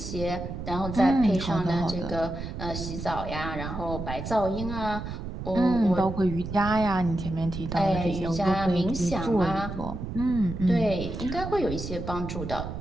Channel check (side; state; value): right; noise; rumble, 7 dB below the sound